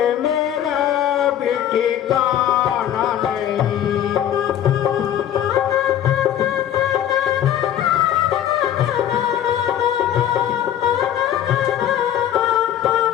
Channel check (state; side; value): quieter; right; 10.8 dB